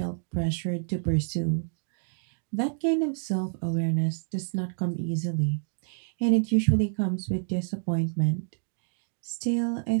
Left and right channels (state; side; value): silent; left; digital silence